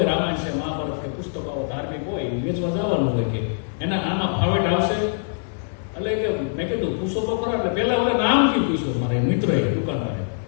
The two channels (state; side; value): silent; right; digital silence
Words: રામાયણ છે, મહાભારત કે પુસ્તકો ધાર્મિક હોય વેચવા જવાનું હોય કે એના આમાં ફાવેટ આવશે. એટલે કે મેં કીધું પૂછો તો ખરા. એટલે પહેલા ઓલા નામથી પૂછ્યું મારે મિત્રએ દુકાનવાળે